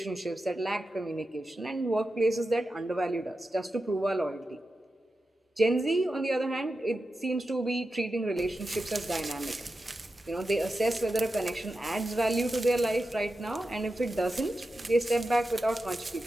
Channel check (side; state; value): both; normal; correlation 0.91